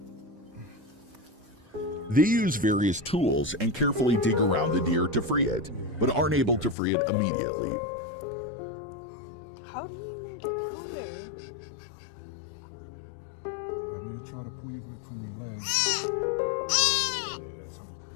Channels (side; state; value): right; drops out; at 6.8 s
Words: They use various tools and carefully dig around the deer to free it, but aren't able to free it immediately. How do you even get down there? I'm going to try to pull you from your legs.